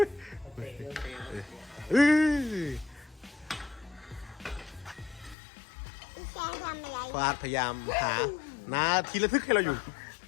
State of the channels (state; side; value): drops out; right; at 5.4 s